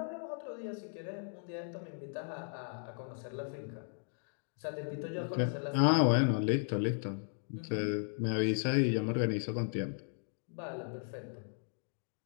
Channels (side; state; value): right; silent; 54 dB below the other